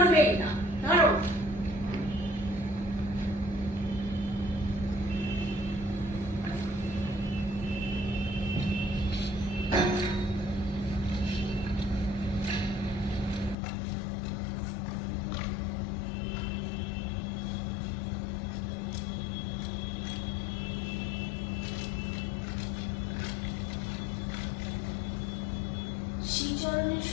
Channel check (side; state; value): right; drops out; at 13.6 s